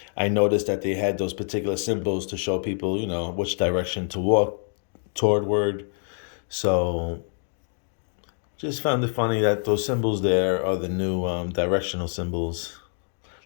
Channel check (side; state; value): right; silent; 57 dB below the other